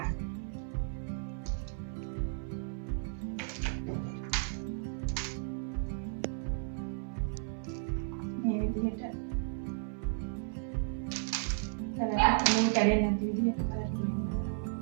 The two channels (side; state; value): left; silent; 55 dB below the other